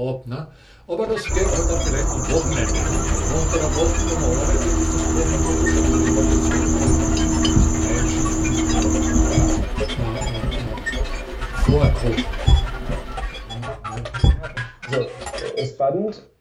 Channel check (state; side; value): identical; both; correlation 1.00